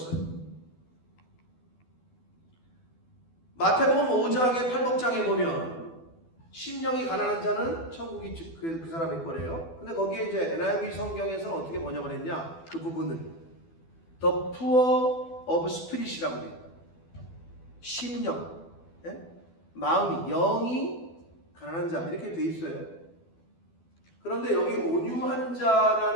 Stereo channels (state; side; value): late; right; 12 ms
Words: 마태복음 5장에 8복장에 보면 심령이 가난한 자는 천국이 그 사람의 거래요. 근데 거기에 이제 NIV 성경에서는 어떻게 번역을 했냐? 그 부분은 The poor of spirit이라고 해요. 심령, 마음이, 영이 가난한 자 이렇게 돼 있어요. 그런데 여기 온유한